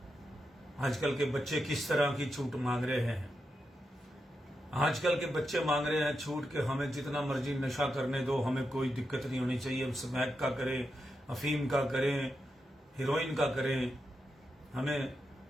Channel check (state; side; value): normal; both; correlation 0.86